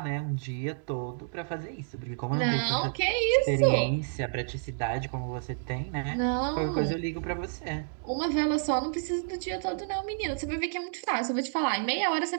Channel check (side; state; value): left; silent; digital silence